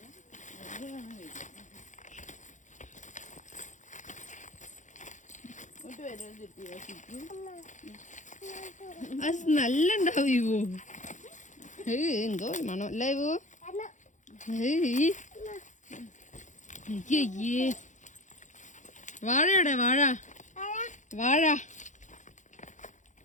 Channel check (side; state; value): right; late; 0.35 ms